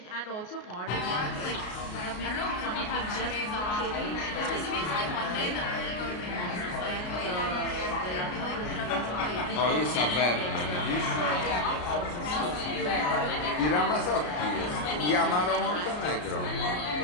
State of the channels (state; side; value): late; right; 33 ms